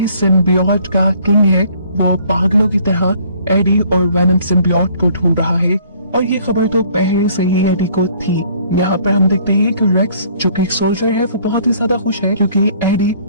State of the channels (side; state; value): both; inverted; correlation -0.58